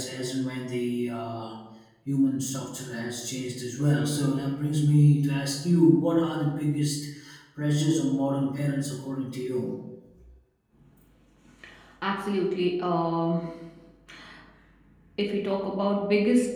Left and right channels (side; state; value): both; identical; correlation 1.00